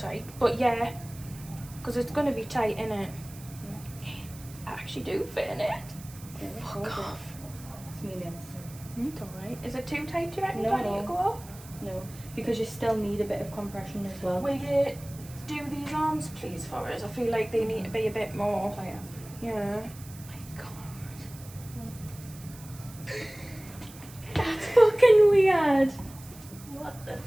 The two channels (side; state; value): right; noise; hiss, 19 dB below the sound